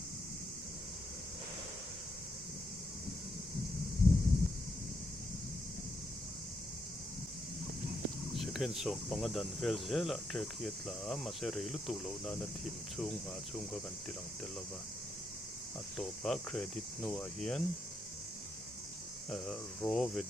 second song pangadan vel zela track yet la ma se reilu tu lo na na thim chung nga chung ka kan tilang telova atopa credit no a hian raw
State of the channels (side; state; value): both; normal; correlation 0.79